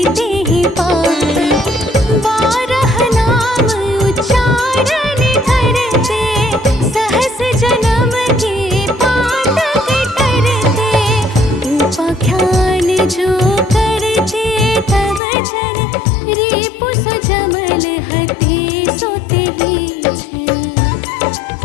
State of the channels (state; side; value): drops out; right; at 15.2 s